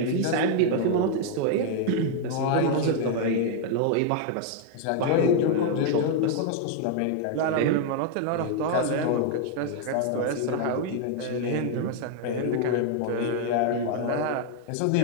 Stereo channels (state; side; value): different; both; correlation 0.00